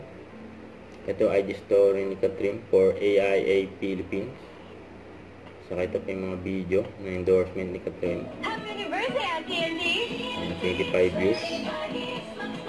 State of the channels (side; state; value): both; identical; correlation 1.00